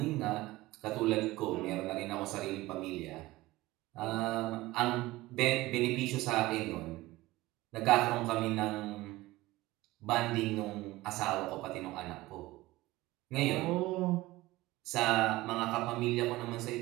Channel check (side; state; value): left; quieter; 18.8 dB